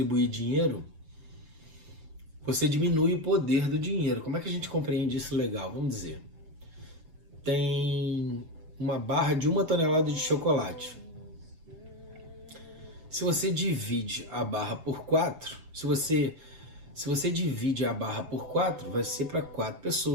dinheiro, você diminui o poder do dinheiro. Como é que a gente compreende isso legal? Vamos dizer, tem uma barra de 1 tonelada de chocolate. Se você divide a barra por 4, se você divide a barra por 4, vai ser para 4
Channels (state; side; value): late; left; 6.3 ms